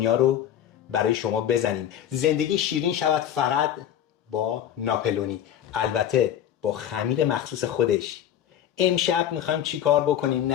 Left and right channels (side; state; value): right; quieter; 10.4 dB